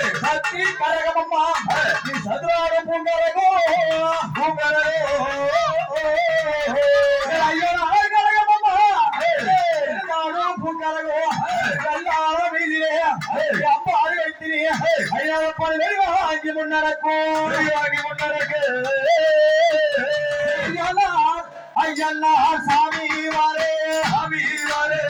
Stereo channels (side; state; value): both; identical; correlation 1.00